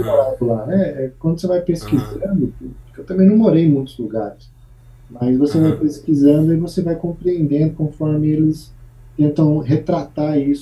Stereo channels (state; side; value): identical; both; correlation 1.00